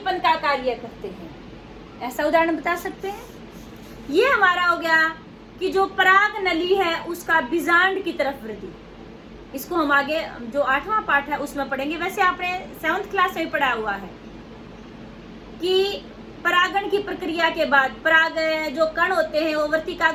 का कार्य करते हैं। ऐसा उदाहरण बता सकते हैं। ये हमारा हो गया कि जो पराग नली है उसका बीजांड की तरफ वृद्धि। इसको हम आगे जो 8वां पाठ है उसमें पढ़ेंगे। वैसे आपने 7th क्लास में पढ़ा हुआ है कि परागण की प्रक्रिया के बाद पराग जो कण होते हैं वो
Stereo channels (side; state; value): both; identical; correlation 1.00